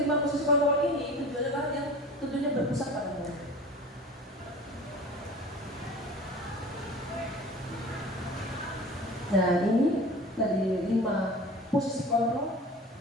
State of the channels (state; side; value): normal; both; correlation 0.39